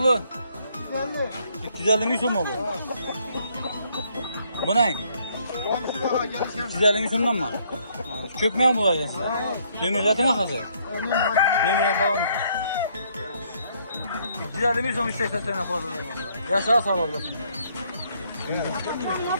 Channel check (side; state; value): both; inverted; correlation -0.68